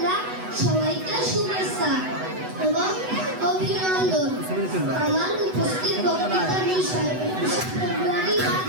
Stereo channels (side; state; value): left; late; 8.0 ms